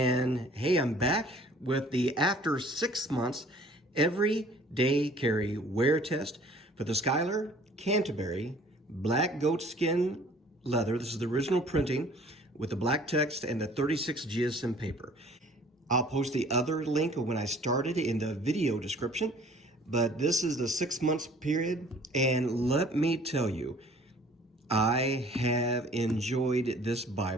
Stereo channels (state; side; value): normal; both; correlation 0.53